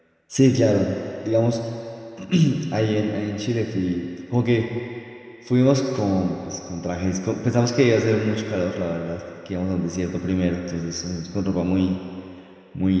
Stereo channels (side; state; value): both; identical; correlation 1.00